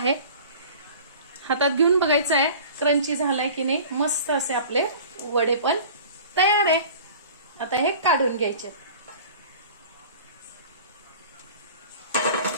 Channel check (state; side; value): inverted; both; correlation -0.42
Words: हातात घेऊन बघायचं आहे क्रंची झालाय की नाही. मस्त असे आपले वडे पण तयार आहे. आता हे काढून घ्यायचे.